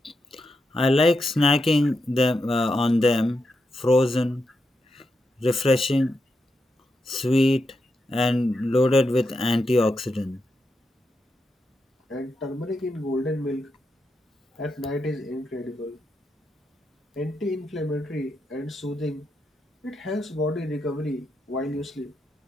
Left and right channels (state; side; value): normal; both; correlation 0.85